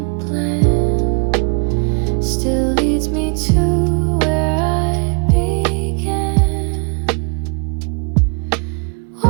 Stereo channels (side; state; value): left; quieter; 34.5 dB